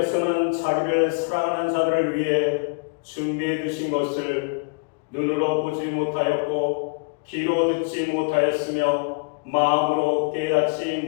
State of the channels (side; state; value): right; quieter; 32.8 dB